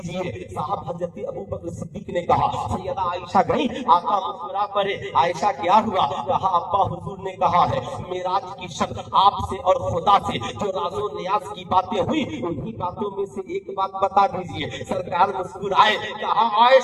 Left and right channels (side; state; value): both; identical; correlation 1.00